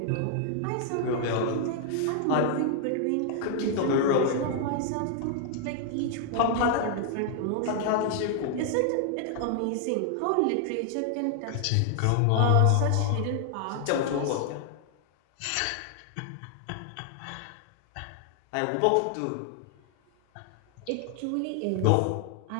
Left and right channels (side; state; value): both; different; correlation 0.00